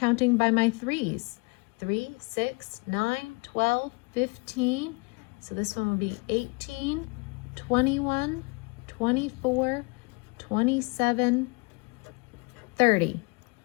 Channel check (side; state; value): right; quieter; 30.0 dB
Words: by my 3s. 3, 6, 9, 12, 15. So this one will be 18, 21, 24, 27, 30.